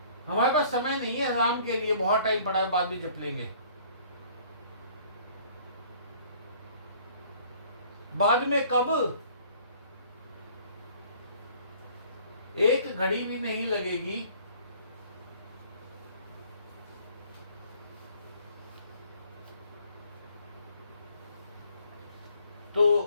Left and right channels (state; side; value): inverted; both; correlation -0.56